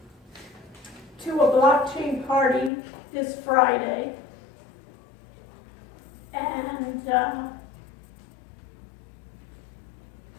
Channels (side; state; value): right; drops out; at 2.7 s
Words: to a blockchain party this Friday, and